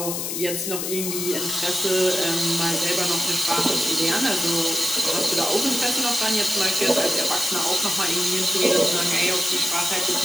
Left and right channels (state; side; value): noise; left; hiss, 3 dB below the sound